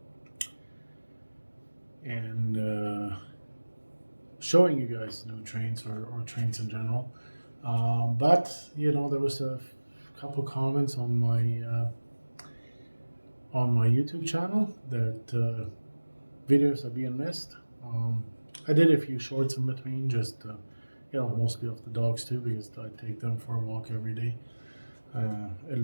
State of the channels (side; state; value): both; inverted; correlation -1.00